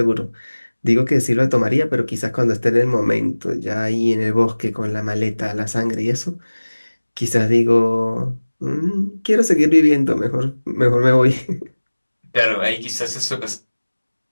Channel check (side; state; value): both; inverted; correlation -1.00